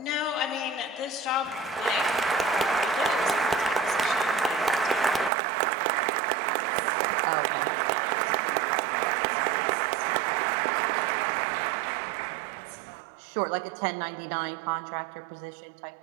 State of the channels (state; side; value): drops out; left; at 5.3 s